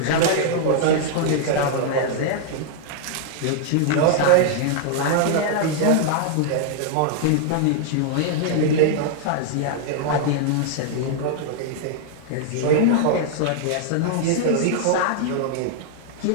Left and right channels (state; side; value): different; both; correlation -0.01